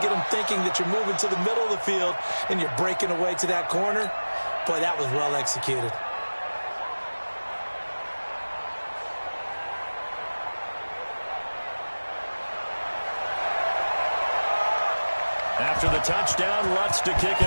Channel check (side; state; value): both; inverted; correlation -1.00